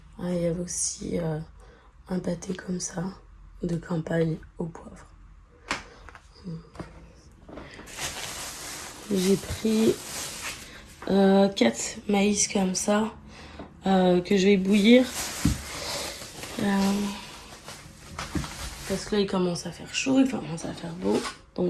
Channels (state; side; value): identical; both; correlation 1.00